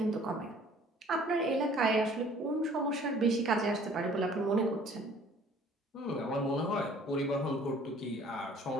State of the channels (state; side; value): normal; both; correlation 0.54